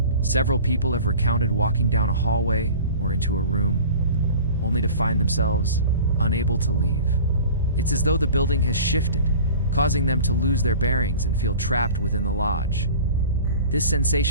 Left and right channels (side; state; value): both; inverted; correlation -0.41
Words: Several people have recounted walking down a hallway or into a room, only to find themselves unable to leave. It's as though the building has shifted, causing them to lose their bearings and feel trapped within the lodge. This